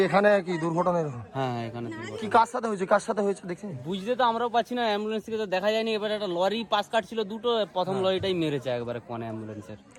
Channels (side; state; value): both; identical; correlation 1.00